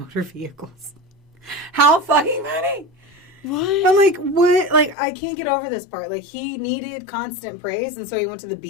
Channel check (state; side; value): drops out; right; at 5.0 s